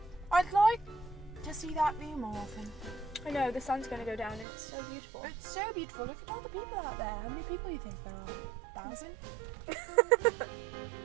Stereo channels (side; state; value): left; drops out; at 4.5 s